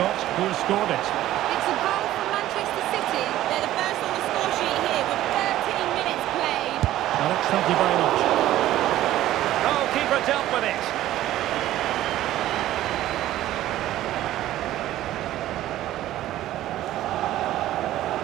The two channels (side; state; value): left; quieter; 14.1 dB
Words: who has scored it. It's a goal from Manchester City. They're the first on the score sheet here with 13 minutes played. Alex, thank you very much. Oh, keeper dealt with it.